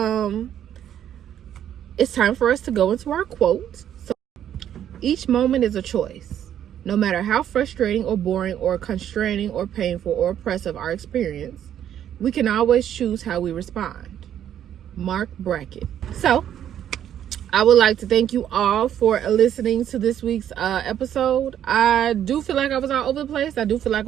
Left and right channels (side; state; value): left; quieter; 10.3 dB